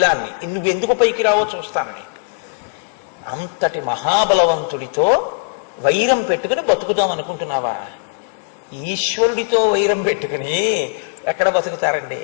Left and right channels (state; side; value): silent; right; digital silence